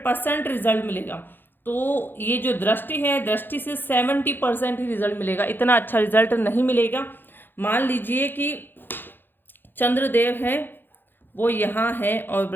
रिजल्ट मिलेगा। तो ये जो दृष्टि है, दृष्टि से 70% ही रिजल्ट मिलेगा, इतना अच्छा रिजल्ट नहीं मिलेगा। मान लीजिए कि चंद्रदेव है वो यहाँ है और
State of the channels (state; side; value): late; right; 0.097 ms